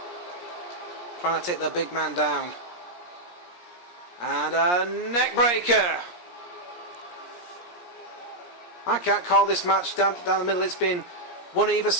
Trying to take the big man down. And a neck breaker. I can't call this match down the middle. It's been one either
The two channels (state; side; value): late; right; 17 ms